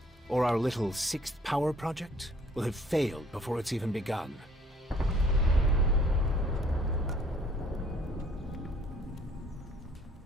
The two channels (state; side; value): normal; both; correlation 0.59